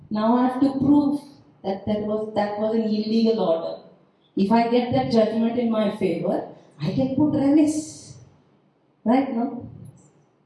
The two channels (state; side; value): identical; both; correlation 1.00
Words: Now I have to prove that that was an illegal order. If I get that judgment in my favor, I can put remiss. Right, no?